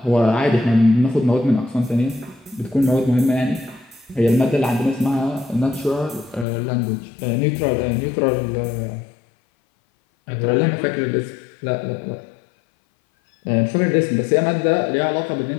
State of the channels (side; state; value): right; drops out; at 6.5 s